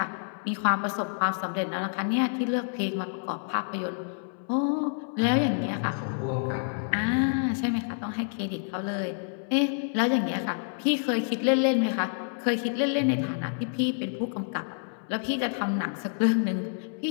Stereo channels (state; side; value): silent; right; 59 dB below the other